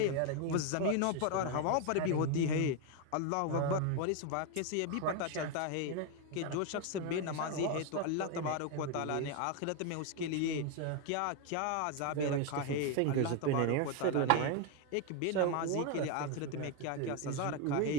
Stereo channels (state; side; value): different; both; correlation 0.01